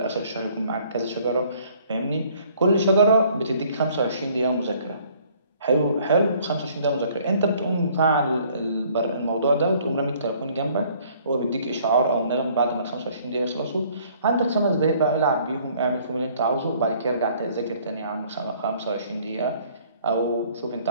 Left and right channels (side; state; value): both; inverted; correlation -0.59